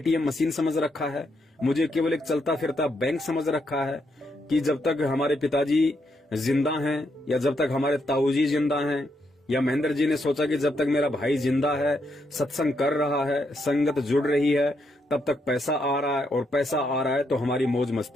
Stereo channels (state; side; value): normal; both; correlation 0.78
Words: मशीन समझ रखा है, मुझे केवल एक चलता फिरता बैंक समझ रखा है कि जब तक हमारे पिताजी जिंदा हैं या जब तक हमारे ताऊजी जिंदा हैं, या महेंद्र जी ने सोचा कि जब तक मेरा भाई जिंदा है, सत्संग कर रहा है, संगत जुड़ रही है, तब तक पैसा आ रहा है, और पैसा आ रहा है तो हमारी मौज